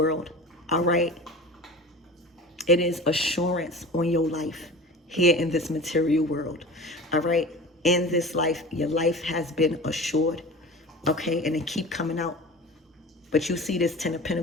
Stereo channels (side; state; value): both; normal; correlation 0.36